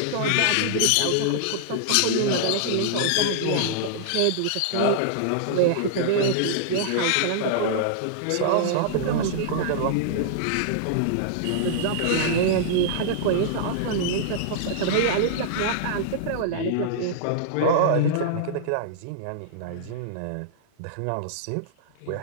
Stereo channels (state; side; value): different; both; correlation -0.01